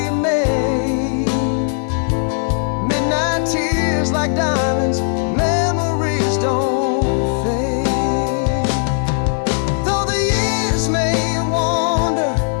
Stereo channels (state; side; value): silent; right; 67 dB below the other